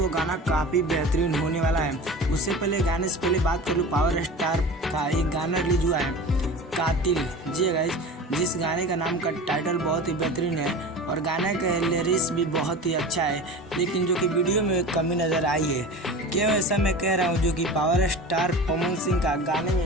गाना काफ़ी बेहतरीन होने वाला है। उससे पहले गाने से पहले बात कर लूँ, पावर स्टार का एक गाना रिलीज हुआ है कातिल। जी गाइस, जिस गाने का नाम का टाइटल बहुत ही बेहतरीन है और गाने का लिरिक्स भी बहुत ही अच्छा है, लेकिन जो कि वीडियो में कमी नज़र आई है। क्यों ऐसा मैं कह रहा हूँ, जो कि पावर स्टार पवन सिंह का गाने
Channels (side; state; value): both; normal; correlation 0.34